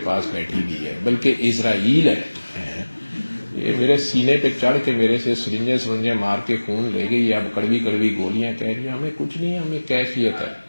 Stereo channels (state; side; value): inverted; both; correlation -1.00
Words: پاس بیٹھی ہوئی ہے، بلکہ اسرائیل ہے، یہ میرے سینے پہ چڑھ کے میرے سے سرنجے مار کے خون لے گئی، اب کڑوی کڑوی گولیاں کہہ رہی ہیں ہمیں کچھ نہیں، ہمیں کیفیت ہے۔